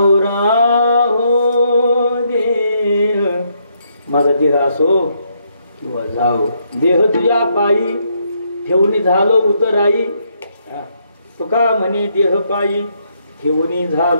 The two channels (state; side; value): inverted; both; correlation -0.75